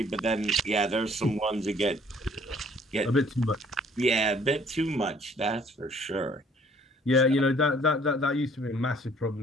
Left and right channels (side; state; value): both; normal; correlation 0.58